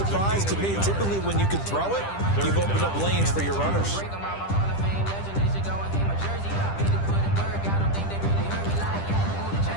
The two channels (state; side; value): late; right; 10 ms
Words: to me. Typically, when you can throw it, you've opened up lanes for your runners.